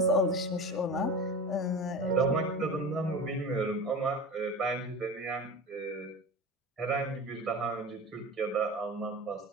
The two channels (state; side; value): normal; both; correlation 0.31